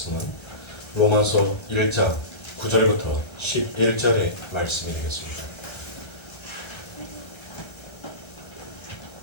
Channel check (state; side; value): late; right; 1.3 ms